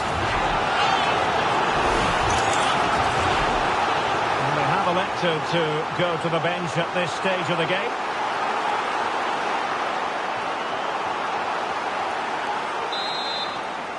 And they have elected to go to the bench at this stage of the game.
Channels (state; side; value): identical; both; correlation 1.00